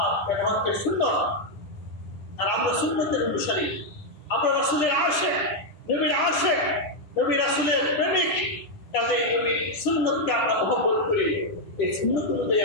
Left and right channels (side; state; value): right; late; 10 ms